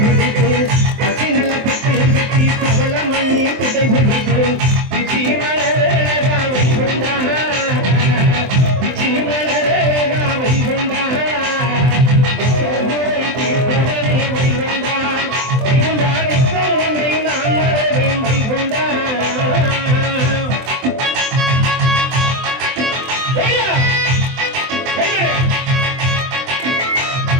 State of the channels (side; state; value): left; late; 23 ms